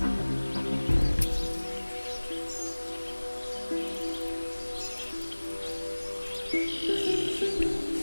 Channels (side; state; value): both; inverted; correlation -1.00